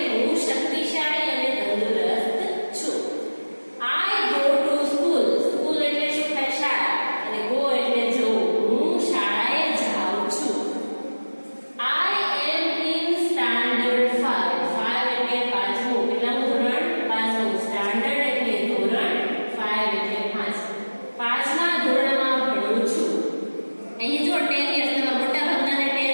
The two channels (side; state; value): both; inverted; correlation -1.00